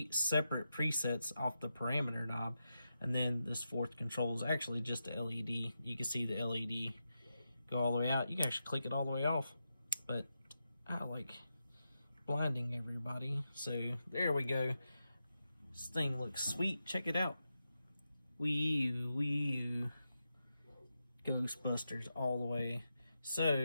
separate presets off the parameter knob, and then this 4th control is actually just the LED. You can see the LED go all the way out. You can actually click it all the way off, but I like blinding everybody. So there we go. This thing looks sweet. Check it out. Wee Ghostbusters all the way.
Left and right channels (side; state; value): both; inverted; correlation -0.88